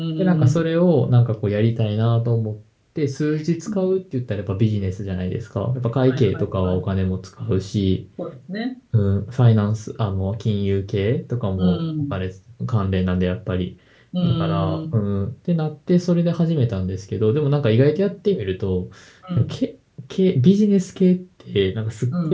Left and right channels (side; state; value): both; identical; correlation 1.00